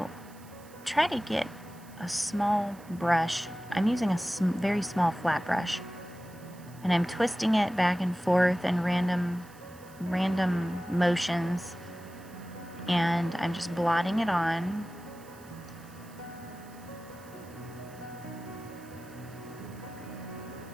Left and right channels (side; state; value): right; noise; hiss, 24 dB below the sound